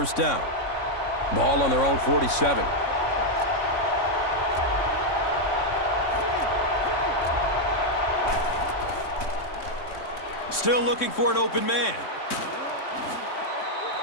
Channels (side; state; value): right; late; 3.6 ms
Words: down. Ball on their own 47. Still looking for an open man.